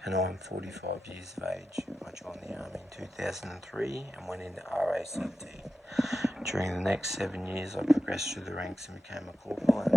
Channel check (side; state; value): both; normal; correlation 0.92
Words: and I'm 45 years of age. I joined the Army in 2003 and went into RACT. During the next 7 years I progressed through the ranks and became a corporal and